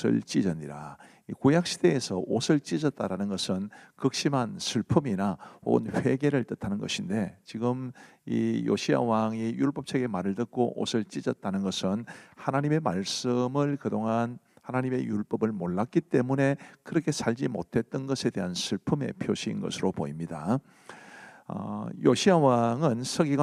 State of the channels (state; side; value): identical; both; correlation 1.00